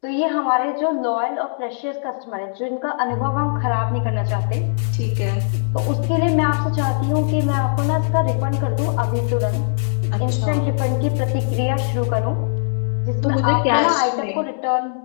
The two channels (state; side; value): silent; right; digital silence